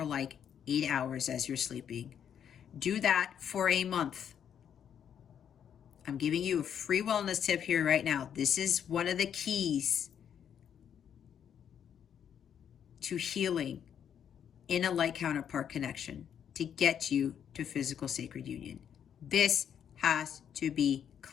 like 8 hours as you're sleeping. Do that for a month. I'm giving you a free wellness tip here right now. This is one of the keys to healing in a light counterpart connection to get you to physical sacred union. This has to be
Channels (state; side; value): quieter; right; 8.7 dB